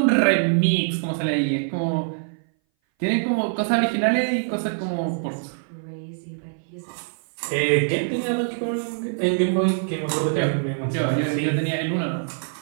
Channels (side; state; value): left; silent; 60 dB below the other